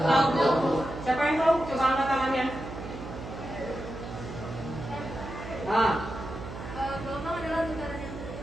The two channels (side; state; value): right; noise; hum, 10 dB below the sound